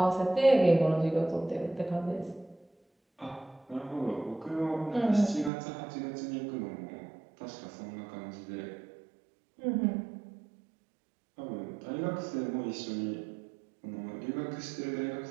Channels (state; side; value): drops out; left; at 5.5 s